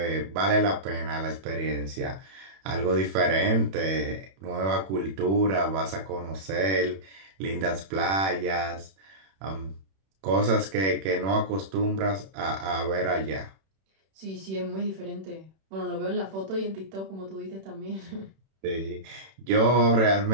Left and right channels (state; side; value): late; left; 31 ms